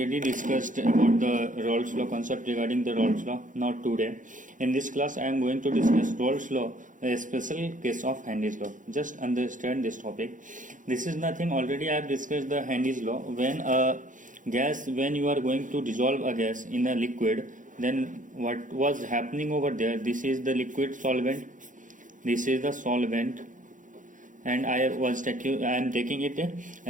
discussed about the Rolle's law concept regarding the Rolle's law. Now today in this class I am going to discuss Rolle's law, a special case of Henry's law. Just understand this topic. This is nothing, already I have discussed the Henry's law. When a gas, when you are going to dissolve a gas in a liquid, then what was happening over there, this is the liquid solvent, this is the solvent, and I am taking it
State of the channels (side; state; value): left; late; 0.37 ms